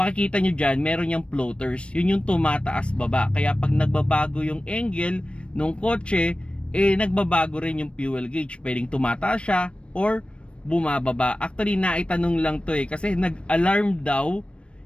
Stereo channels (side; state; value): right; late; 0.059 ms